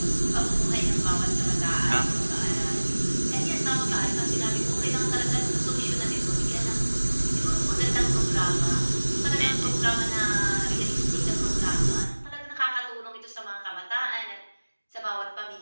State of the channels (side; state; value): both; inverted; correlation -1.00